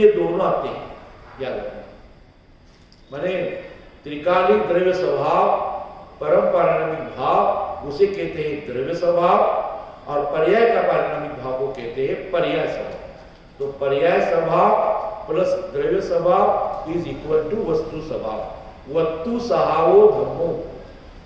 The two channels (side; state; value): both; identical; correlation 1.00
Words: दोनों आते हैं, याद रखना. माने त्रिकालिक द्रव्य स्वभाव, परम पारिणामिक भाव उसे कहते हैं द्रव्य स्वभाव, और पर्याय का पारिणामिक भाव को कहते हैं पर्याय स्वभाव. तो पर्याय स्वभाव प्लस द्रव्य स्वभाव इज इक्वल टू वस्तु स्वभाव। वस्तु सहावो धर्मो,